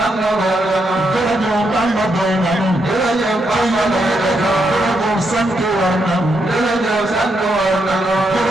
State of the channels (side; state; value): both; normal; correlation 0.80